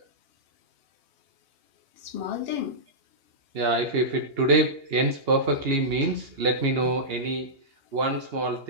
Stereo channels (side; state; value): left; late; 2.8 ms